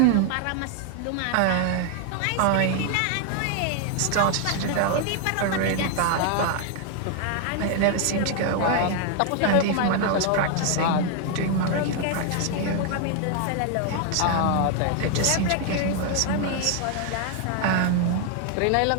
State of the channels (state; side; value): different; both; correlation 0.00